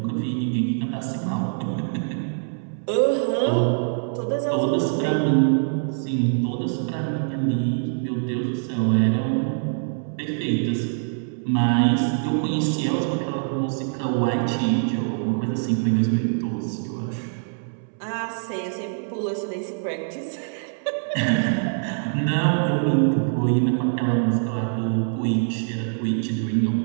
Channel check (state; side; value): silent; left; 63 dB below the other